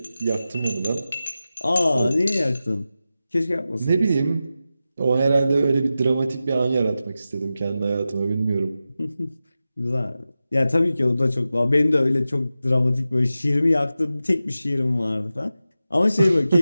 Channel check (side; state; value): both; inverted; correlation -0.93